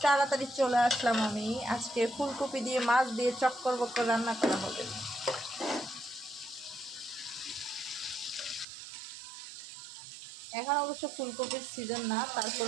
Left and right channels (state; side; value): drops out; left; at 8.7 s